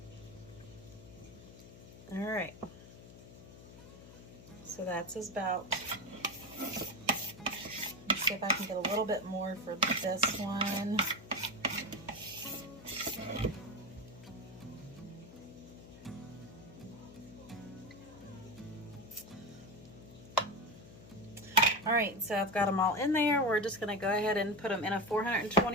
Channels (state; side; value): noise; left; hum, 17 dB below the sound